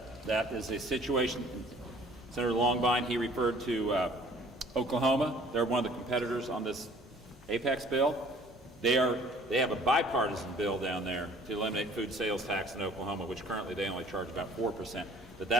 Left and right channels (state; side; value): normal; both; correlation 0.53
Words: is a situation. Senator Longbine, he referred to Oklahoma. They're one of the competitors on this Apex bill. They have a bipartisan bill down there to eliminate food sales tax in Oklahoma, which currently they only charge about 4%. But